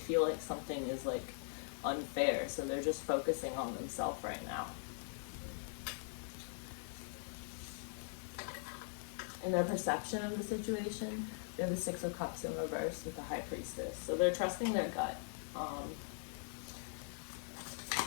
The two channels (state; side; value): silent; right; digital silence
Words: like something is like unfair. So they're just focusing on themselves right now. In their perception of the situation, we have the Six of Cups in reverse with the High Priestess. So they're trusting their gut.